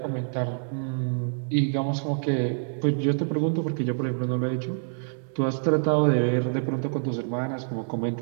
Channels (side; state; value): left; silent; digital silence